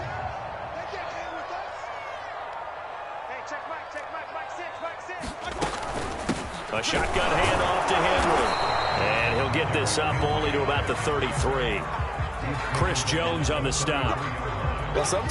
A shotgun handoff to Henry. And he'll get this up only to about the 33. Chris Jones on the stop. Well,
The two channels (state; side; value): identical; both; correlation 1.00